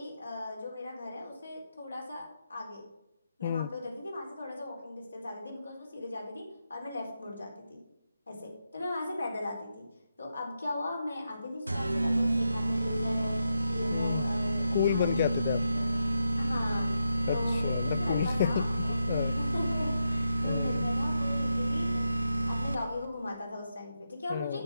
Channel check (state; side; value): inverted; both; correlation -0.85